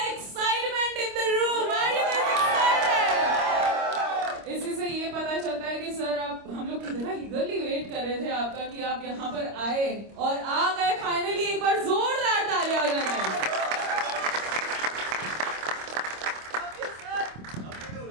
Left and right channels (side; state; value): left; late; 26 ms